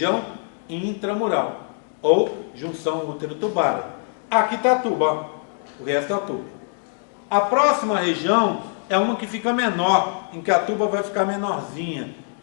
intramural, ou junção útero-tubária. Aqui está a tuba, ó, o resto é a tuba. A próxima região é uma que fica menor, em que a tuba vai ficar menorzinha,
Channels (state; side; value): silent; right; 57 dB below the other